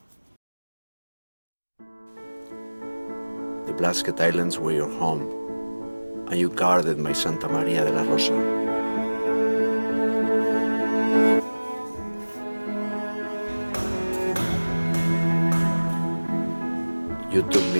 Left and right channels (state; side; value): inverted; both; correlation -1.00